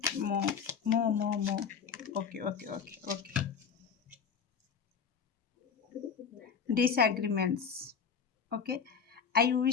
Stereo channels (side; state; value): right; quieter; 6.6 dB